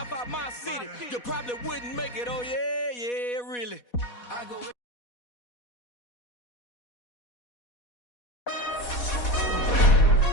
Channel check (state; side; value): late; right; 4.1 ms